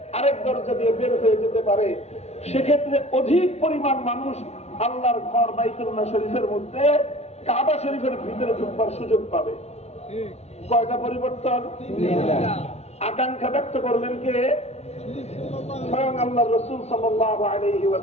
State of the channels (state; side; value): late; right; 0.31 ms